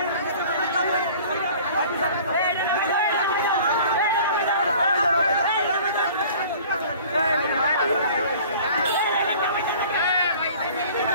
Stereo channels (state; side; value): inverted; both; correlation -0.47